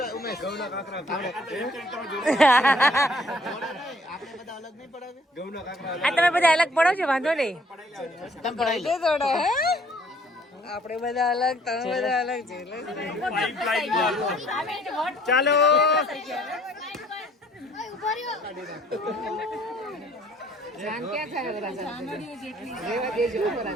તમે બધા અલગ પડો છો, વાંધો નહીં. આપણે બધા અલગ, તમે બધા અલગ છે. ચાલો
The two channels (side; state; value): both; normal; correlation 0.60